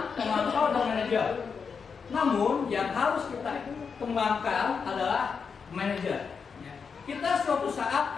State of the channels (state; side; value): quieter; right; 5.8 dB